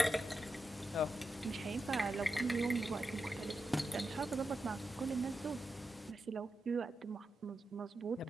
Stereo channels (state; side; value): normal; both; correlation 0.88